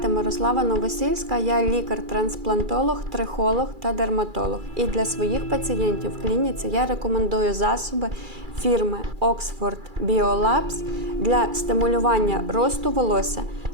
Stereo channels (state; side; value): late; left; 2.3 ms